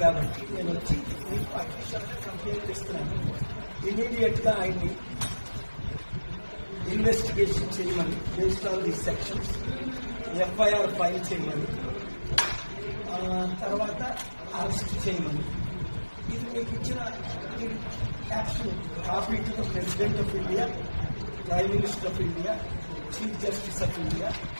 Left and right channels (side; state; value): both; inverted; correlation -1.00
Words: కాబట్టి నేను వచ్చి మీకు అఫీషియల్గా కంప్లైంట్ ఇస్తున్నాను. ఇమీడియట్గా ఆయన్ని ఇన్వెస్టిగేషన్ చేయమని, based on the sections FIR file చేయమని, తర్వాత అరెస్ట్ చేయమని. ఇది మీకు ఇచ్చిన caption copy to the president of India, prime minister of India, chief justice of India,